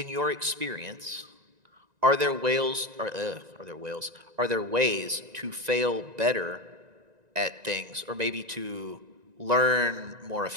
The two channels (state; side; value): late; left; 1.9 ms